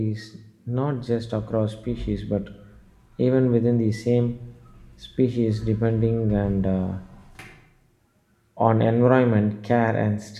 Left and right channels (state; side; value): identical; both; correlation 1.00